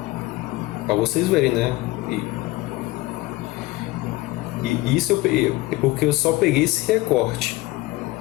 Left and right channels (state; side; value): quieter; right; 19.6 dB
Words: Para vocês verem, né? E isso é porque eu só peguei esse recorte